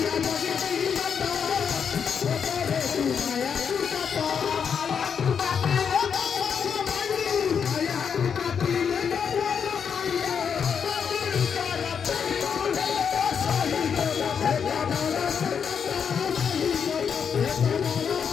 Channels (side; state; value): right; quieter; 7.0 dB